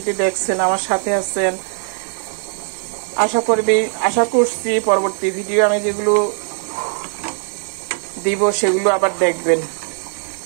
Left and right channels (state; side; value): silent; left; digital silence